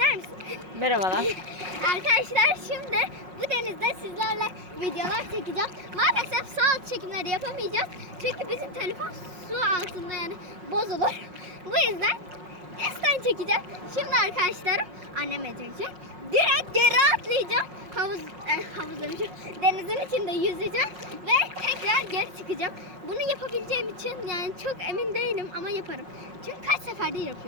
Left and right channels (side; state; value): left; late; 5.5 ms